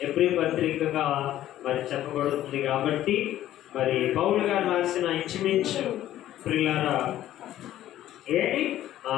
హెబ్రీ పత్రికగా మరి చెప్పబడుతుంది. కాబట్టి మరి పౌలు గారు రాసిన ఇంచుమించు ప్రియులారా ఏంటి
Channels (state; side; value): quieter; right; 13.0 dB